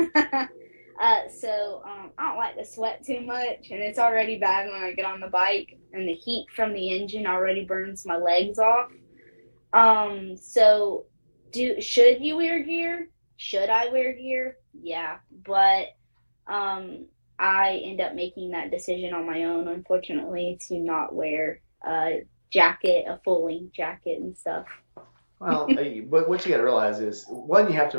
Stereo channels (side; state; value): both; inverted; correlation -1.00